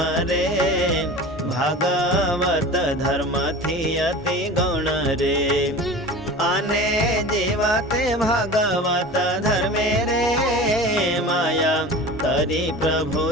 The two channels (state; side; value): normal; both; correlation 0.35